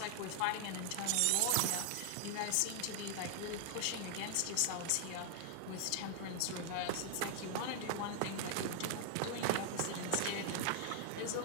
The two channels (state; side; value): different; both; correlation 0.00